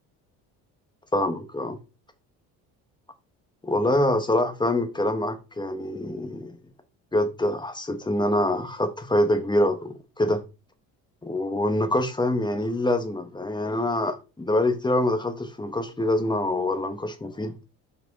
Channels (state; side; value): normal; both; correlation 0.66